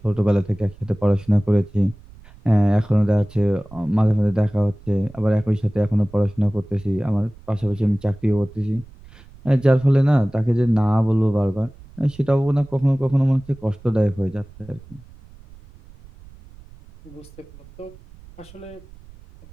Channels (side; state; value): right; noise; rumble, 22 dB below the sound